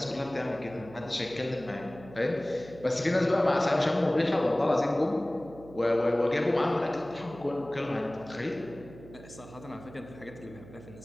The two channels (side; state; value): right; noise; hum, 18 dB below the sound